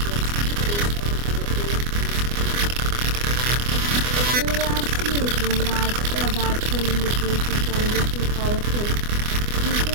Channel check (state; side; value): late; left; 24 ms